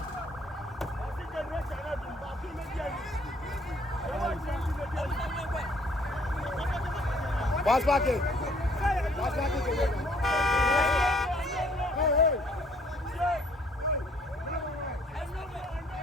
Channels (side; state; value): both; normal; correlation 0.61